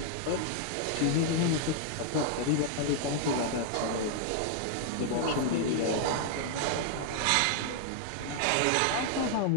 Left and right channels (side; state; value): both; different; correlation 0.00